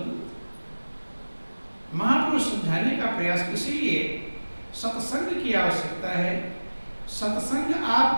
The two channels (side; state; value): both; inverted; correlation -1.00